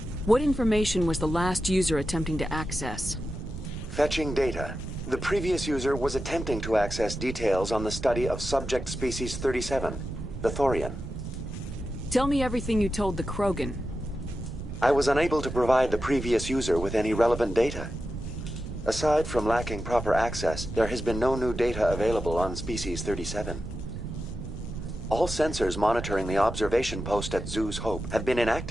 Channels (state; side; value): noise; right; rumble, 9 dB below the sound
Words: What information was the last user attempting to access? Fetching data. The previous user was attempting to access details on the study of subject species 37, the Thorian. Tell me everything you told the Krogan. I was unable to provide the previous user with any relevant data. Aside from lacking proper access, there has been no new data available on species 37. All sensors monitoring the observation post at Zoo's Hope have been